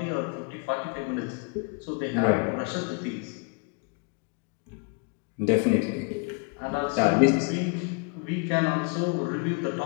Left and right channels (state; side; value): quieter; right; 34.3 dB